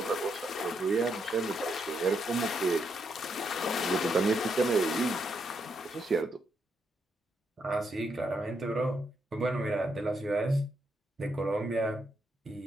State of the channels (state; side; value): normal; both; correlation 0.79